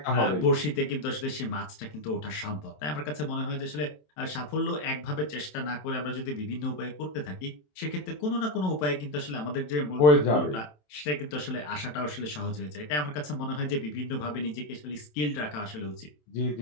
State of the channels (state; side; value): late; right; 27 ms